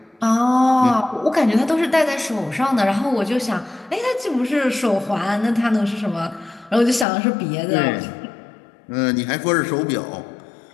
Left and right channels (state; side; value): drops out; right; at 7.1 s